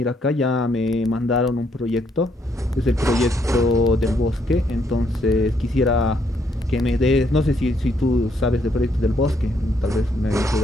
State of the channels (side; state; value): both; normal; correlation 0.72